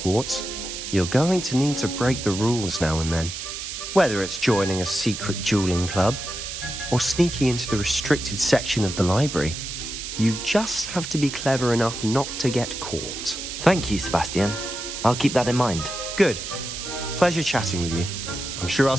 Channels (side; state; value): right; noise; hiss, 7 dB below the sound